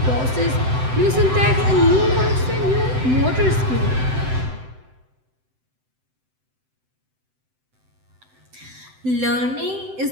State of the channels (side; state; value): left; late; 7.8 ms